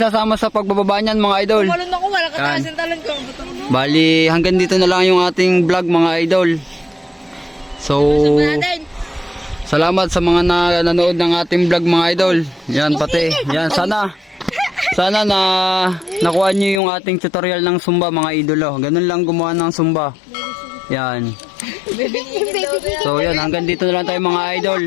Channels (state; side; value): drops out; right; at 16.8 s